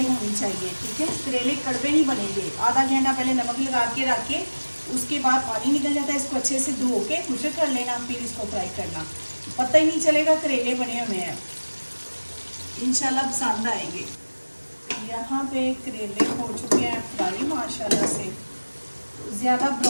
होनी चाहिए। ठीक है, करेले कड़वे नहीं बनेंगे। आधा घंटा पहले नमक लगा के रख के उसके बाद पानी निकल जाता है। इसको अच्छे से धो के खुशक कर लेना, फिर इसको फ्राई करना। पता ही नहीं चलेगा करेले बने हुए हैं। इंशाल्लाह पसंद आएंगे। यहाँ पे करेले हो चुके हैं फ्राई माशाल्लाह से। ज़्यादा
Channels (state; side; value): inverted; both; correlation -1.00